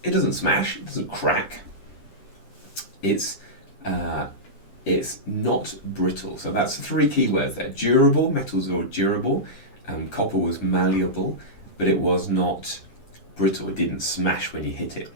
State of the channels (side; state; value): right; late; 10 ms